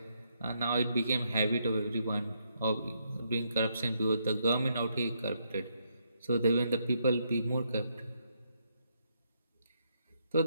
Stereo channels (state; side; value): inverted; both; correlation -0.76